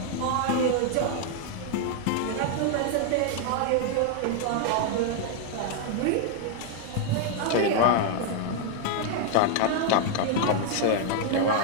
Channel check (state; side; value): different; both; correlation 0.00